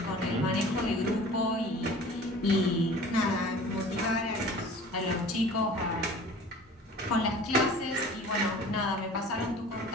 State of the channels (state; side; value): normal; both; correlation 0.44